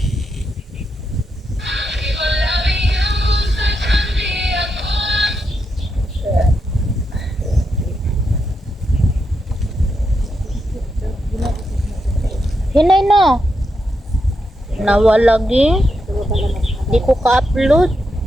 Hinay no. Nawalagi. Ito ba lang Di ko ka-upload.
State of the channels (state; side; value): normal; both; correlation 0.84